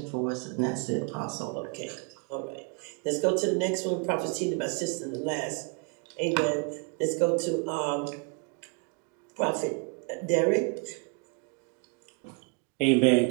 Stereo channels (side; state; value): left; quieter; 34.8 dB